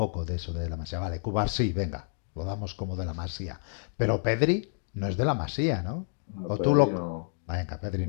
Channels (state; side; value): silent; right; 58 dB below the other